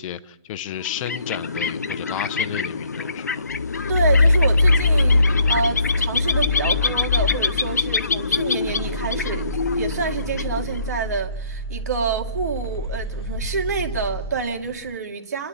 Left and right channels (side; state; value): both; inverted; correlation -0.61